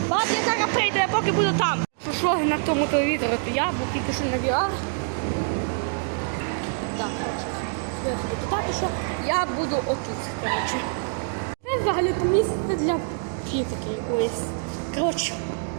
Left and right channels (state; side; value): silent; left; 61 dB below the other